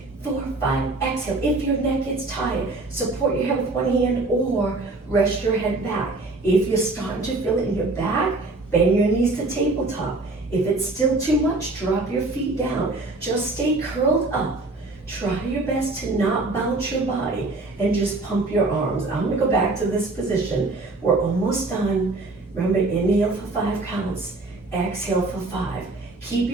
4, 5. Exhale. If your neck gets tired, support your head with one hand or rest your head back. If you're starting to feel it in your back, bend your knees to tabletop. If it's still too much, drop your feet down. Just stay curled up. Try your best to not bounce your body and just pump your arms. I'm gonna go back to this position. We're almost done. Remember, inhale for 5 counts. Exhale for 5. Keep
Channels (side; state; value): left; quieter; 3.1 dB